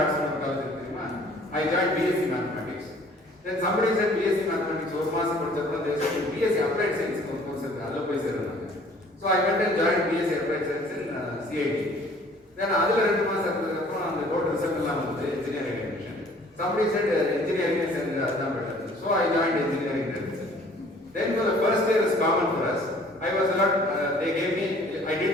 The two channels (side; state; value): both; normal; correlation 0.54